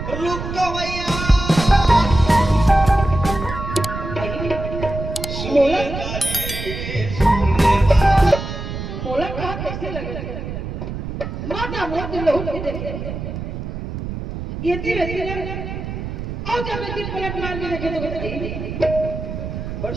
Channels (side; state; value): right; noise; rumble, 6 dB below the sound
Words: रुक तो भैया मोला कहा कैसे लगे माता मोर दिल लहू लगे ये धीरे धीरे और जब मैं 3 मिनट मार के देखे तो बड़